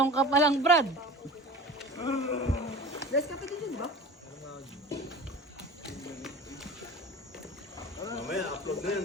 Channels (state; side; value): normal; both; correlation 0.37